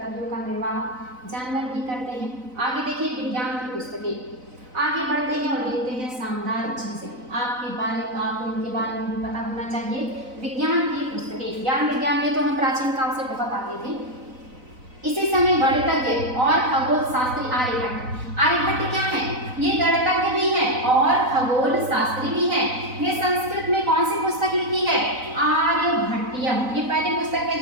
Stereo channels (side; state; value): left; late; 4.0 ms